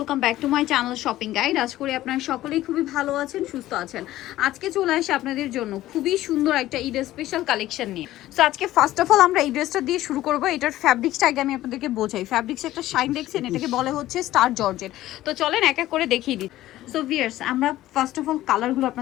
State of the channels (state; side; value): quieter; right; 15.0 dB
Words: back to my channel shopping guide. আজ করে আপনারা সকলেই খুবই ভালো আছেন, সুস্থ আছেন। আজকে চলে আসে আপনাদের জন্য খুবই সুন্দর একটা ঈদের স্পেশাল কালেকশন নিয়ে। সো আজকে ফার্স্ট অফ অল আমরা এই ড্রেসটা দিয়ে শুরু করব। এটার ফ্যাব্রিক্সটা আগে আমি আপনাদেরকে বোঝাই। ফ্যাব্রিক্স একটা শাইন দেখছেন, এটাকে বলে হচ্ছে স্টার জর্জেট। তো চলেন এক এক করে দেখিয়ে দিই। সো ভিউয়ার্স, আমরা ফার্স্ট অফ অল কালারগুলো